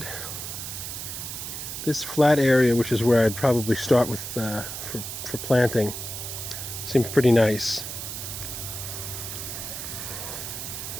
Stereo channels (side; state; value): right; noise; hiss, 7 dB below the sound